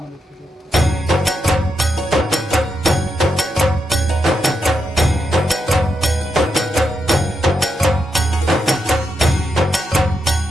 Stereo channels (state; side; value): normal; both; correlation 0.83